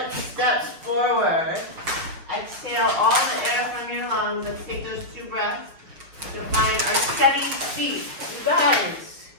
steps forward. Exhale all the air from your lungs. Let's take those 2 breaths to find our steady feet. You guys,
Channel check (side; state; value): left; late; 6.3 ms